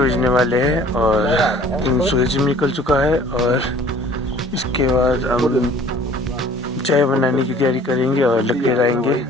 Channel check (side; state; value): both; normal; correlation 0.51